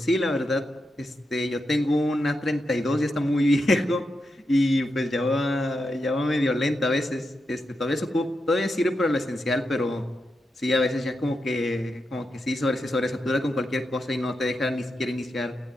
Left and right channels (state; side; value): normal; both; correlation 0.86